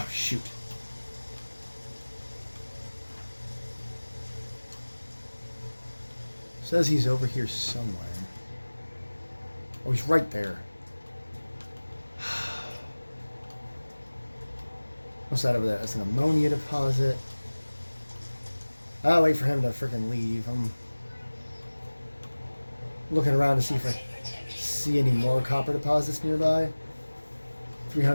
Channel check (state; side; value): inverted; both; correlation -1.00